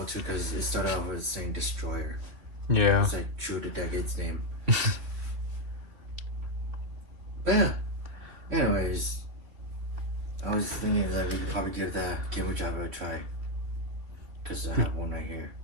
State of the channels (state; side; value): late; left; 3.1 ms